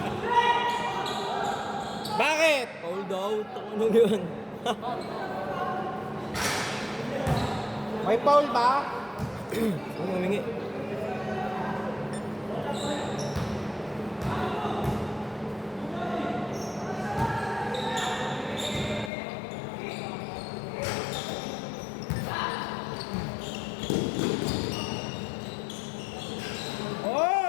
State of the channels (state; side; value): drops out; right; at 19.1 s